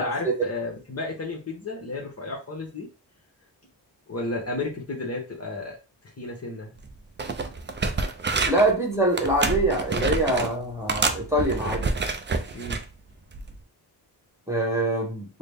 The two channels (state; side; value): normal; both; correlation 0.14